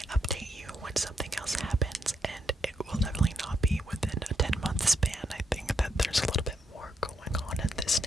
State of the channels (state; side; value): normal; both; correlation 0.79